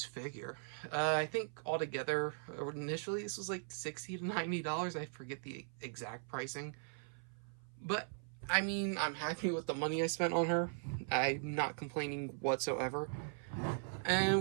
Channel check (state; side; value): silent; left; 52 dB below the other